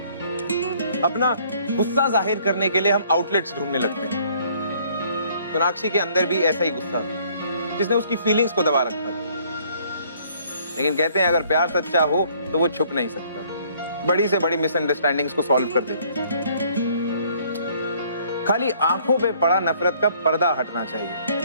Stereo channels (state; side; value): inverted; both; correlation -0.61